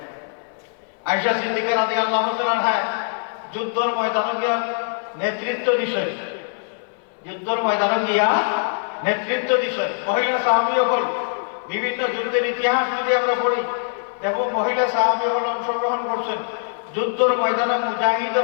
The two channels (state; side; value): silent; right; 59 dB below the other